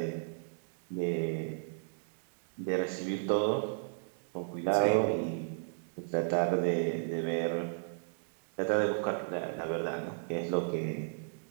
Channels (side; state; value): left; silent; digital silence